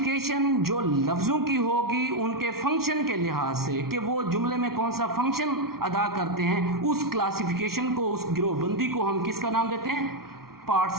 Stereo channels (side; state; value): left; late; 0.94 ms